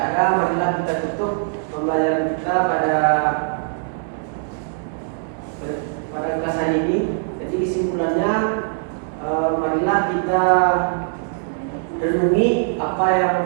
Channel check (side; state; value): left; silent; digital silence